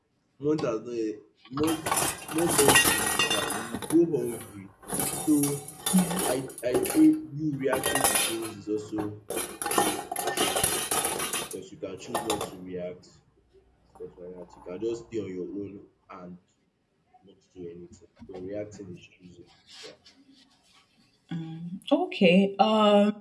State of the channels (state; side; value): identical; both; correlation 1.00